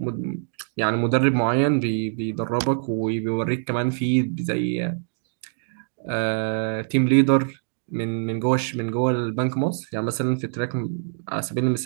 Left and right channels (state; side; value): silent; left; digital silence